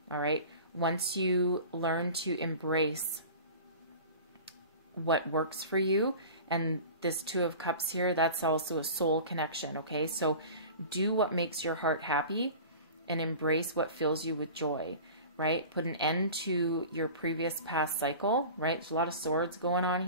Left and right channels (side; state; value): both; inverted; correlation -0.38